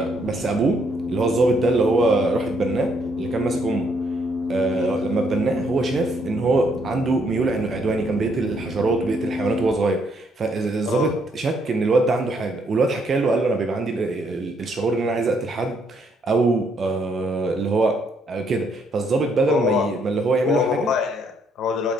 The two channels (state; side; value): normal; both; correlation 0.71